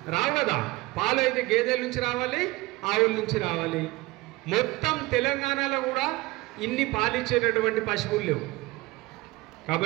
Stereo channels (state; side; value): quieter; left; 20.9 dB